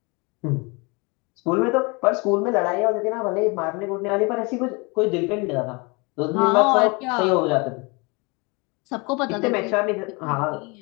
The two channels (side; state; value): right; quieter; 29.0 dB